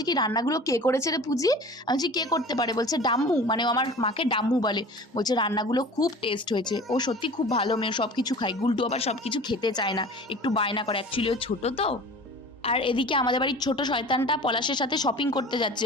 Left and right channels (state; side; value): normal; both; correlation 0.40